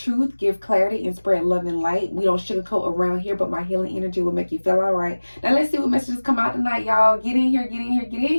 give clarity, and spread love and light. We don't sugarcoat around here, but my healing energy will make you feel all right. Now let's see what messages come out tonight, y'all. Get in here, get in here, get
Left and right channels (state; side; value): inverted; both; correlation -1.00